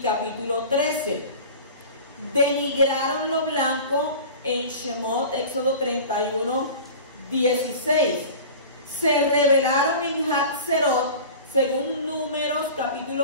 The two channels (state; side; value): inverted; both; correlation -0.37